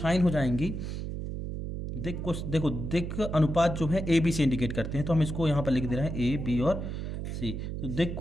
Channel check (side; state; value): right; noise; hum, 5 dB below the sound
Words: हो जाएंगी। दिक् अनुपात जो है ए बी से इंडिकेट करते हैं, तो हम इसको यहाँ पर लिख दे रहे हैं ए बी और सी। तो दिक्